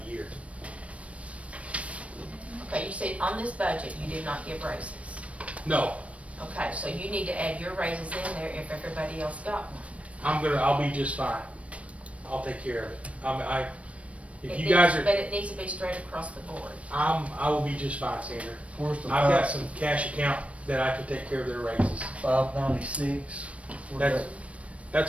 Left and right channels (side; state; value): left; late; 0.064 ms